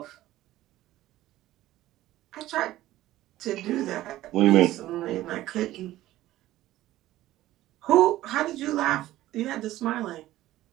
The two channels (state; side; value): quieter; left; 15.2 dB